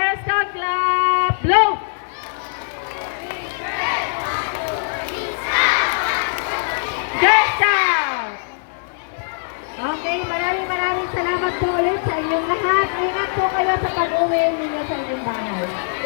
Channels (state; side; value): silent; right; digital silence